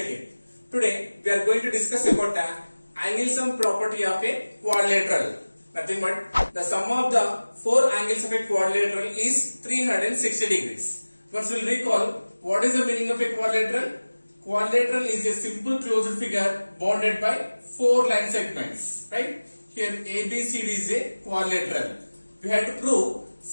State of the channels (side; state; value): both; inverted; correlation -1.00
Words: it. Today, we are going to discuss about the angle sum property of a quadrilateral. Nothing but the sum of the four angles of a quadrilateral is 360 degrees. Once we will recall, what is the meaning of a quadrilateral? Quadrilateral is a simple closed figure bounded by four line segments. Right? Here ABCD is a quadrilateral. We have to prove